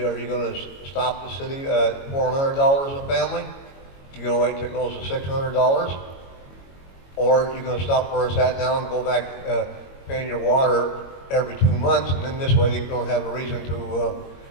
you going to stop the city at $400 a family? You're going to wait till it goes to $600? Or you're going to stop where it's at now and go back paying your water every 2 months, and then this way you don't have a reason to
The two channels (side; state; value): right; late; 22 ms